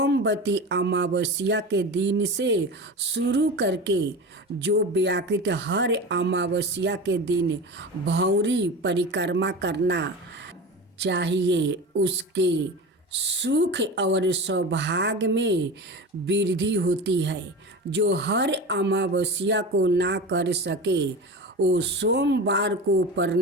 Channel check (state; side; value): normal; both; correlation 0.29